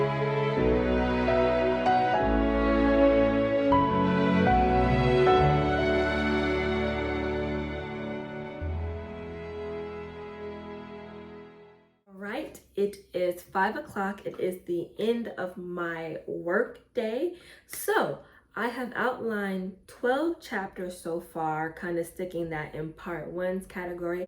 Right, it is 5 o'clock. It is the end of my work day. So I have outlined 12 chapters so far, kind of sticking that in part 1's category.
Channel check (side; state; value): both; identical; correlation 1.00